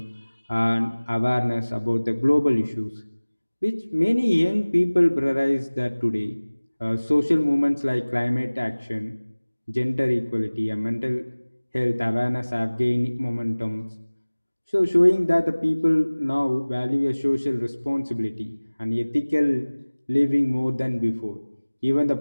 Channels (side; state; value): both; inverted; correlation -1.00